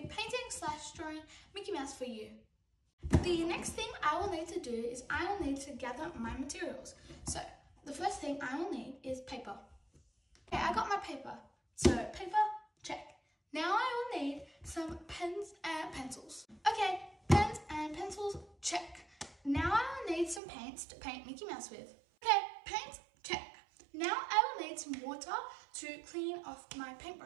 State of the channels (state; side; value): drops out; left; at 20.4 s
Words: painting/drawing Mickey Mouse for you. The next thing I will need to do is I will need to gather my materials. So the first thing I will need is paper. Okay, I got my paper. So paper, check. Now I will need some pens and pencils. Okay, pens and pencils, check. Now I will need some paints to paint Mickey Mouse with. Okay, paints, check. Now I will need some water to clean off my